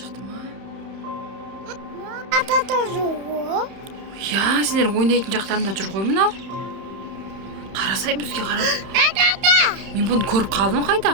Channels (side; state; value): left; late; 31 ms